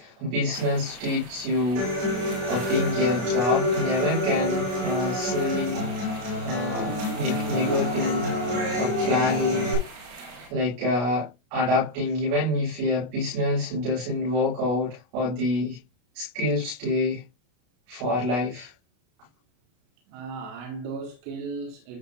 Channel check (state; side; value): late; left; 33 ms